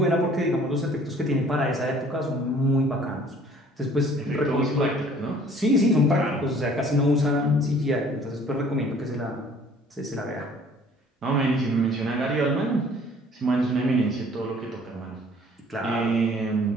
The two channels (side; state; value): both; normal; correlation 0.54